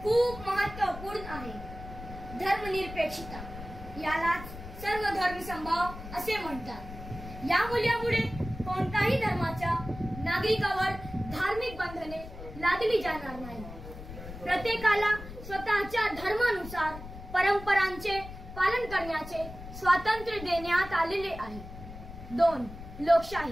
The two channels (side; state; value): left; noise; rumble, 13 dB below the sound